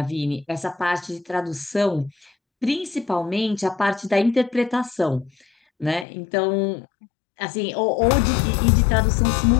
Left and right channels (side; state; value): right; drops out; at 6.1 s